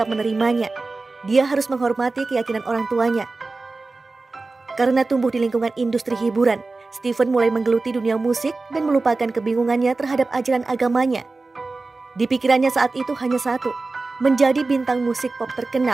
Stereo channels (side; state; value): left; quieter; 3.6 dB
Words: menerimanya. Dia harus menghormati keyakinan orang tuanya. Karena tumbuh di lingkungan industri hiburan, Stevens mulai menggeluti dunia musik dan melupakan kebingungannya terhadap ajaran agamanya. Di pikirannya saat itu hanya satu, menjadi bintang musik pop